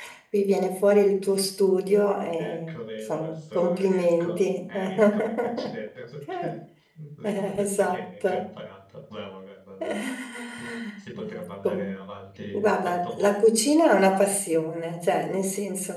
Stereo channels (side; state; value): both; identical; correlation 1.00